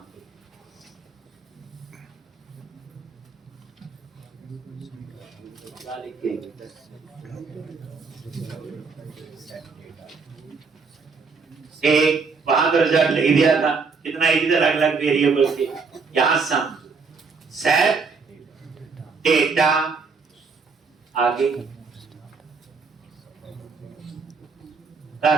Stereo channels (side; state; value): left; quieter; 4.8 dB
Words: पे क्या लिखेंगे एक वहां तो रिजल्ट लिख दिया था, कितना इजी था, अलग अलग वेरिएबल से। यहां सम सेट डेटा, आगे